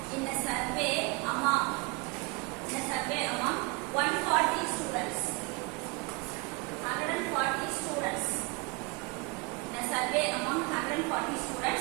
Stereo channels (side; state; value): left; quieter; 28.1 dB